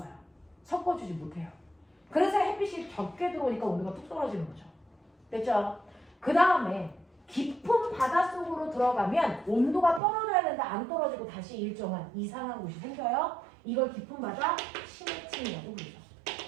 섞어주지 못해요. 그래서 햇빛이 적게 들어오니까 온도가 뚝 떨어지는 거죠. 됐죠? 그 다음에 깊은 바닷속으로 들어가면 온도가 떨어져야 되는데 안 떨어지고 다시 일정한 이상한 곳이 생겨요. 이걸 깊은 바다 심해층이라고 부르죠.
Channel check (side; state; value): left; drops out; at 10.0 s